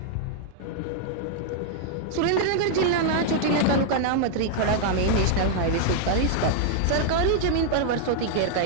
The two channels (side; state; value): both; different; correlation -0.01